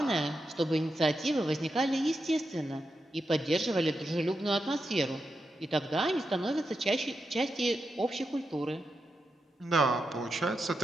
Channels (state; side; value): normal; both; correlation 0.87